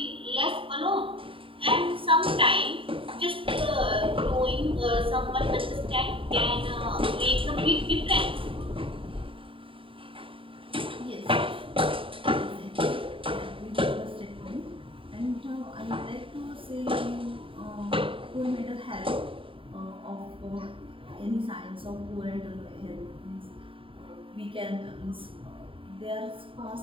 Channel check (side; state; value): left; late; 0.25 ms